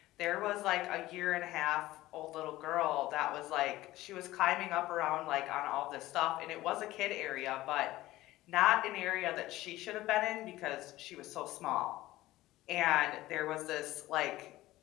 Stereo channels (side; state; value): right; quieter; 16.8 dB